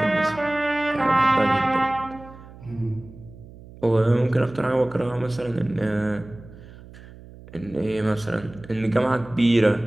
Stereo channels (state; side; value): noise; right; hum, 19 dB below the sound